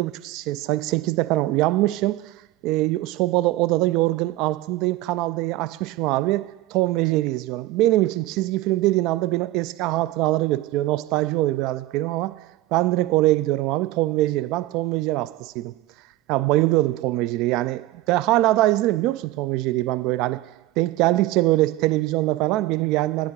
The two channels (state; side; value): quieter; left; 16.8 dB